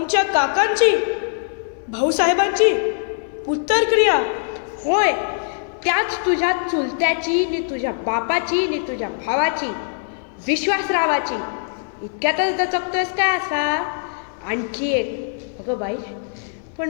काकांची, भाऊसाहेबांची उत्तरक्रिया? होय, त्याच तुझ्या चुलत्याची नि तुझ्या बापाची नि तुझ्या भावाची, विश्वासरावाची. इतक्यातच दचकतोयस काय असा? आणखी एक. अगं बाई, पण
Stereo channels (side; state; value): right; silent; digital silence